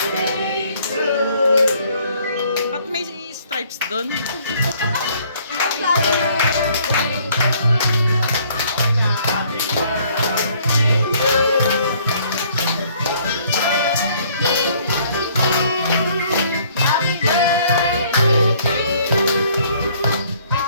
Ba't may stripes doon?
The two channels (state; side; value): inverted; both; correlation -0.61